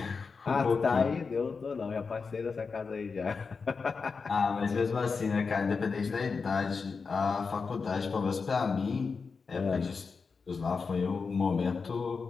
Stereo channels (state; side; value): quieter; right; 5.0 dB